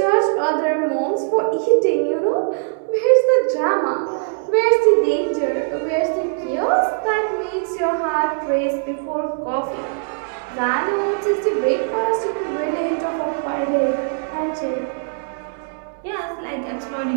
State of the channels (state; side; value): silent; left; 65 dB below the other